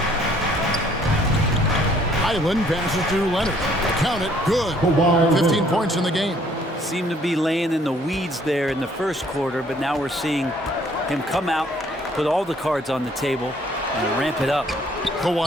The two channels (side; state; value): both; normal; correlation 0.61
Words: Highland passes to Leonard. Count it, good. 15 points in the game. Seemed to be laying in the weeds there in the first quarter, but now we're seeing him come out, put all the cards on the table, and ramp it up.